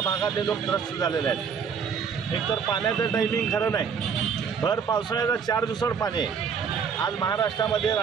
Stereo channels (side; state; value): left; quieter; 6.5 dB